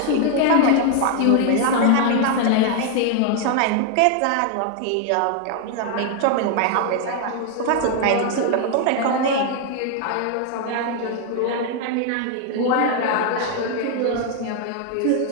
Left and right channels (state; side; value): different; both; correlation 0.00